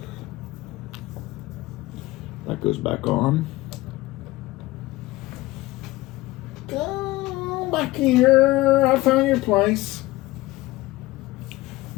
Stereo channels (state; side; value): quieter; right; 19.0 dB